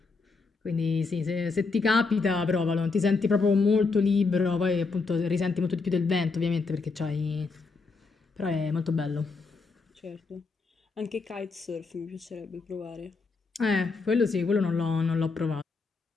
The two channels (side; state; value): right; quieter; 4.2 dB